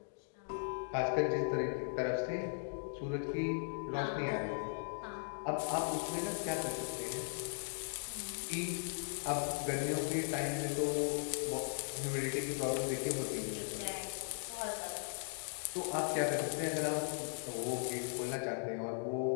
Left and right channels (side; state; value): right; silent; digital silence